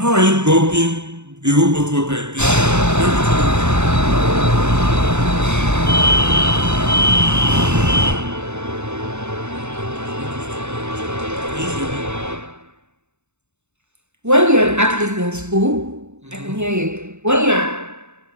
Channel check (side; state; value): left; late; 0.82 ms